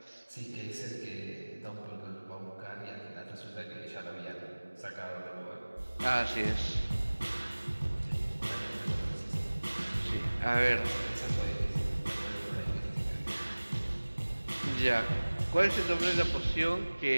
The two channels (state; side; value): inverted; both; correlation -1.00